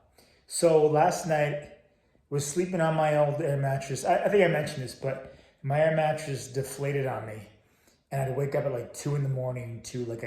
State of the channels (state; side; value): identical; both; correlation 1.00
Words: So last night was sleeping on my old air mattress. I think I mentioned this, but my air mattress deflated on me, and I had to wake up at like 2 in the morning to like